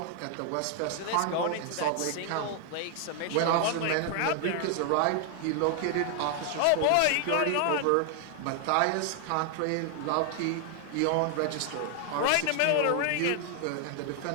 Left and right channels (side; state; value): both; different; correlation 0.00